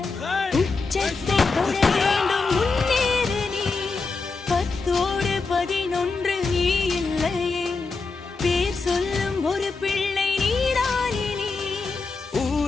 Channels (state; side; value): quieter; right; 4.2 dB